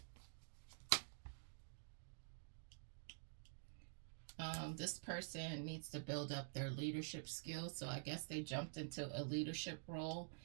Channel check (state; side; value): silent; left; digital silence